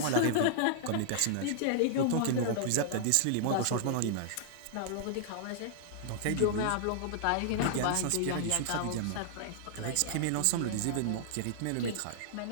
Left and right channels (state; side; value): different; both; correlation -0.01